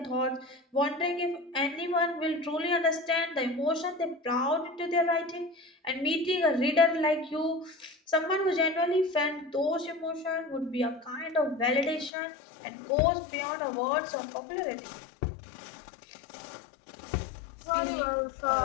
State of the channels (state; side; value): drops out; right; at 12.1 s